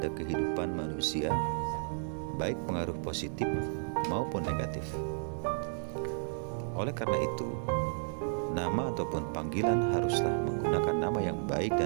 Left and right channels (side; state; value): left; silent; digital silence